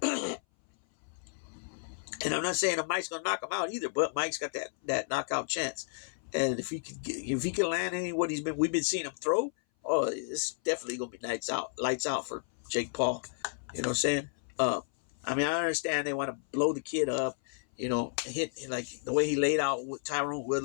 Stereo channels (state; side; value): silent; right; 56 dB below the other